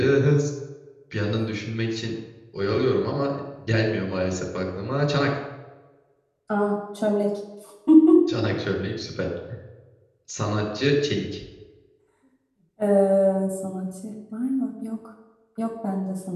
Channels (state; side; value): identical; both; correlation 1.00